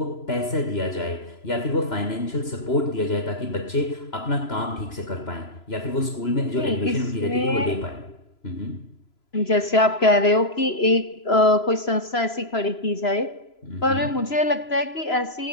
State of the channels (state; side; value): late; right; 3.0 ms